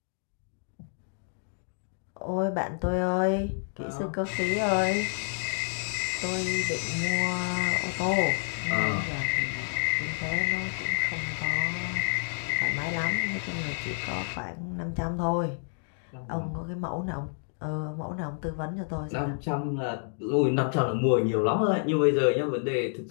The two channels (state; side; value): silent; right; digital silence